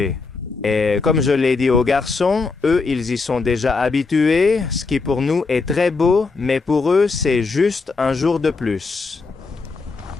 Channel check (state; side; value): quieter; right; 4.2 dB